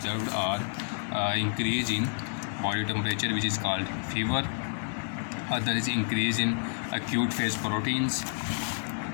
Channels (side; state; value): right; silent; digital silence